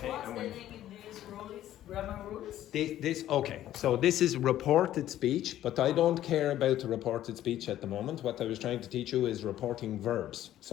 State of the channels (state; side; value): quieter; right; 12.7 dB